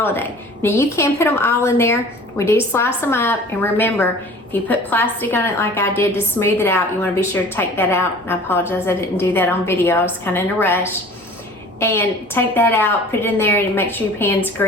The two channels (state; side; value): normal; both; correlation 0.45